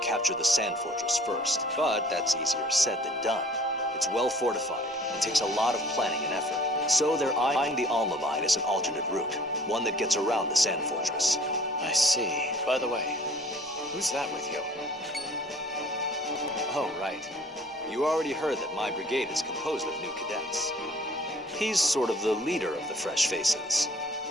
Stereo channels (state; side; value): normal; both; correlation 0.52